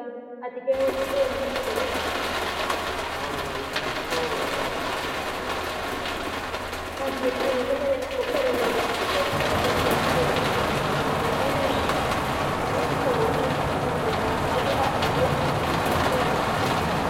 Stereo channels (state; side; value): identical; both; correlation 1.00